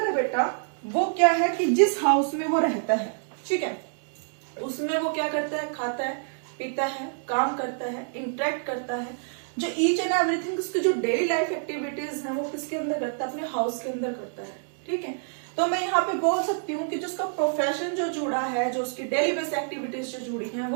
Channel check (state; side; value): silent; left; digital silence